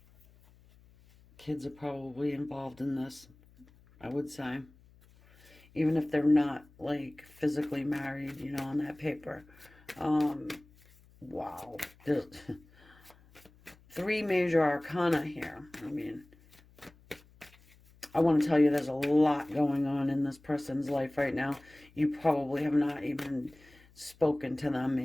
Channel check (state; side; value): noise; left; hum, 27 dB below the sound